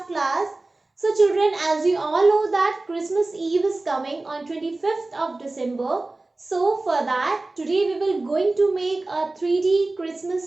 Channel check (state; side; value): quieter; left; 3.1 dB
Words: class. So children, as you all know that Christmas Eve is coming on 25th of December. So for that, today we will going to make a 3D